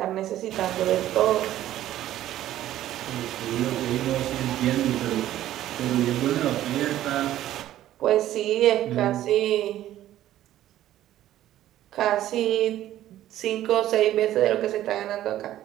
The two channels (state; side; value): quieter; left; 13.2 dB